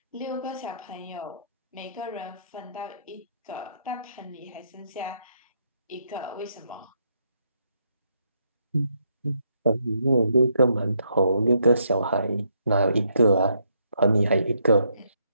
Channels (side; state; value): both; inverted; correlation -0.75